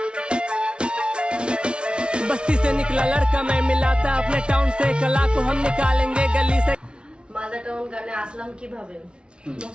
बस्ती से निकला लड़का मैं मिला था अपने टाउन से कला को हम निकालेंगे गली से। মালদা টাউন গানে আসলাম কিভাবে?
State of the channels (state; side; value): late; left; 0.057 ms